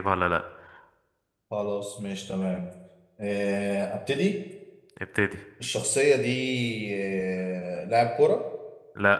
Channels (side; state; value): both; identical; correlation 1.00